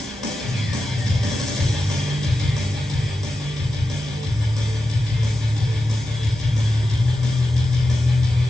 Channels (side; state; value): both; normal; correlation 0.91